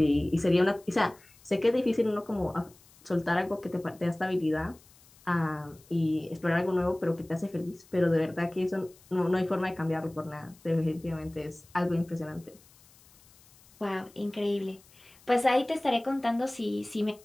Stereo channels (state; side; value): noise; left; hiss, 27 dB below the sound